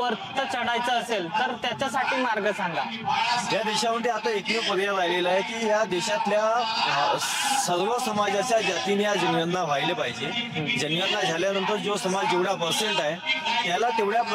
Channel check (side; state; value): both; identical; correlation 1.00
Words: चढायचं असेल तर त्याच्यासाठी मार्ग सांगा. या देशामध्ये आता एकमेव पर्याय राहिलेला आहे की या देशातल्या सर्व समाजाच्या जातीने या जनगणना व्हायला पाहिजे. जनगणना झाल्यानंतर जो समाज जेवढा पर्सेंट आहे त्याला तेवढ्या